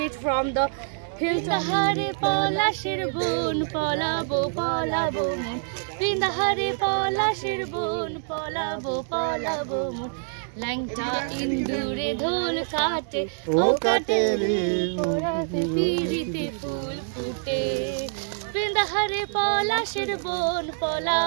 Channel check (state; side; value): silent; left; digital silence